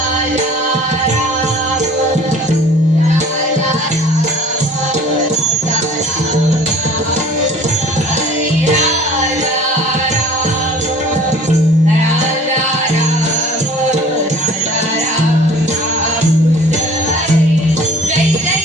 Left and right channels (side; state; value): both; normal; correlation 0.49